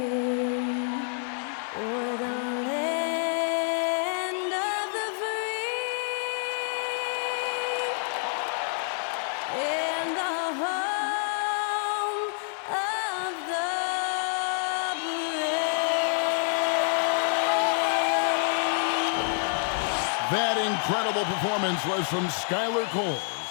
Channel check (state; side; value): silent; right; 60 dB below the other